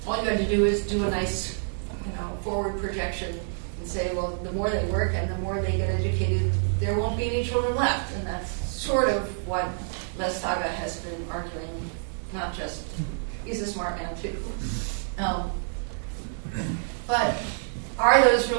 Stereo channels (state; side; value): silent; left; digital silence